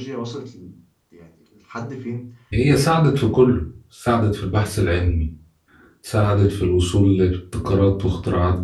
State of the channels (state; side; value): identical; both; correlation 1.00